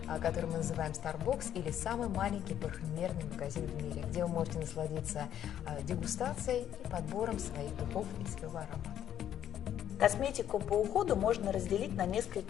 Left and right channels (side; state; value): right; quieter; 10.4 dB